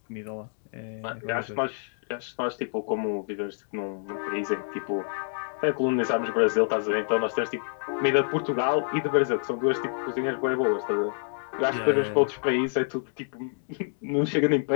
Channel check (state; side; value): silent; right; digital silence